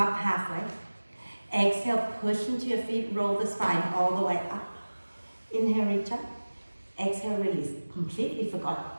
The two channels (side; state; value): both; inverted; correlation -1.00